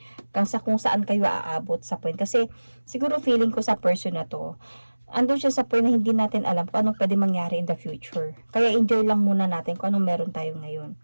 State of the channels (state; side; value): inverted; both; correlation -1.00